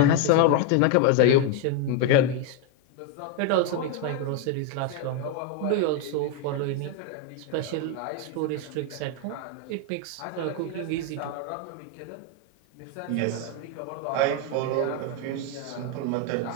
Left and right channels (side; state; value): both; different; correlation 0.01